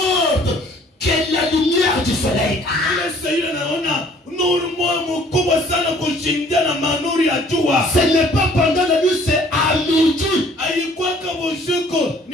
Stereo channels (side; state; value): both; normal; correlation 0.56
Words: que la lumière du soleil. Ile Saidi anaona nuru moja mkubwa sana kushindia na manuri ya jua. Ce n'est pas pendant la nuit, c'est à midi. Haikuwa kama usiku